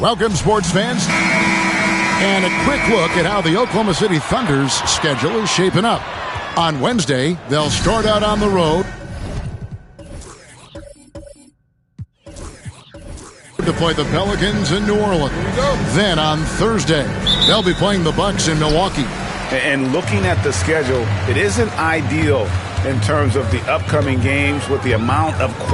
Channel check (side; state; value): both; identical; correlation 1.00